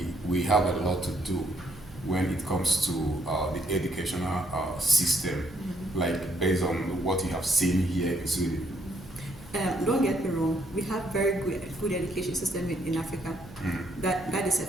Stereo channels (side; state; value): right; noise; hum, 20 dB below the sound